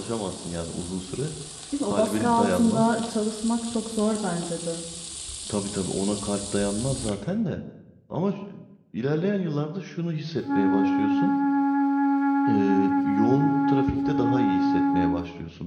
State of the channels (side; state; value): both; identical; correlation 1.00